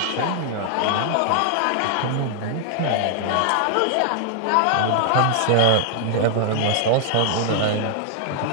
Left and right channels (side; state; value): both; different; correlation 0.00